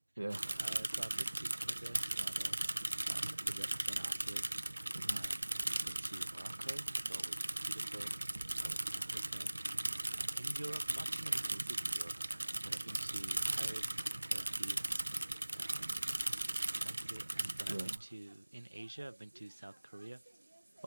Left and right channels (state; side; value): inverted; both; correlation -1.00